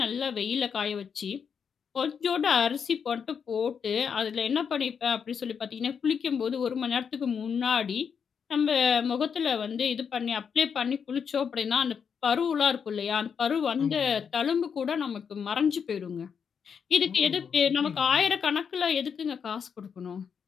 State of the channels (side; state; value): right; quieter; 6.8 dB